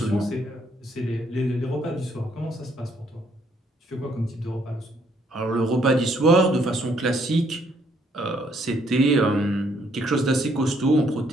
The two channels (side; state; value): both; normal; correlation 0.68